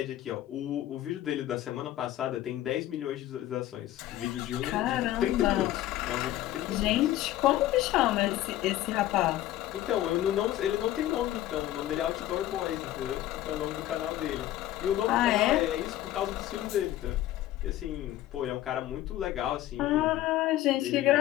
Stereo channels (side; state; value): right; quieter; 14.0 dB